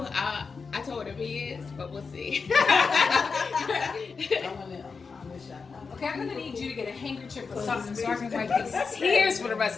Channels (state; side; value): quieter; right; 5.0 dB